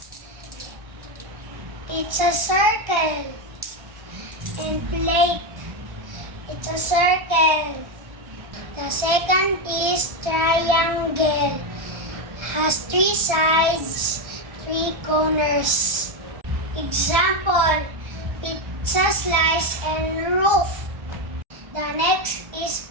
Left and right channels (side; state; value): left; late; 1.3 ms